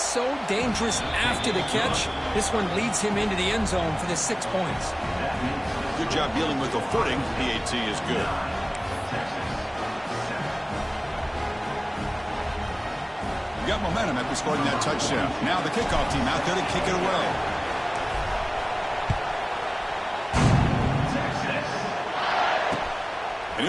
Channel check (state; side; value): identical; both; correlation 1.00